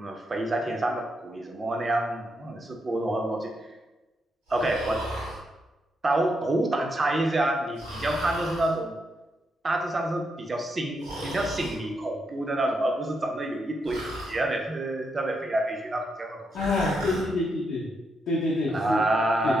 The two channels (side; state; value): both; normal; correlation 0.81